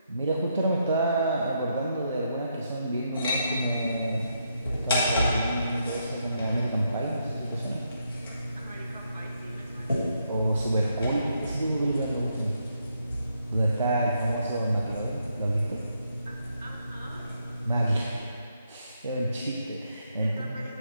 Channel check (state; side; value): inverted; both; correlation -0.78